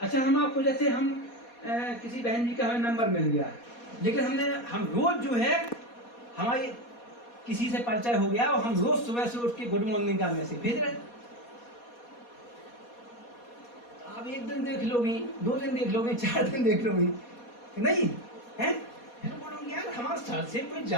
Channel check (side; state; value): right; late; 4.2 ms